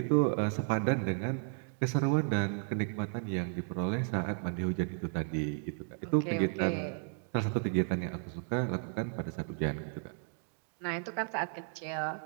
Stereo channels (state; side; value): silent; left; 55 dB below the other